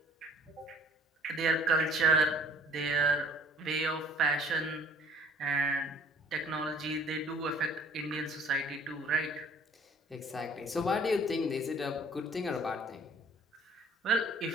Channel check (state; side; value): normal; both; correlation 0.54